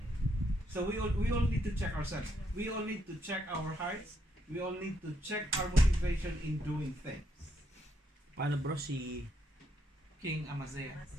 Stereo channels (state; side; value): normal; both; correlation 0.76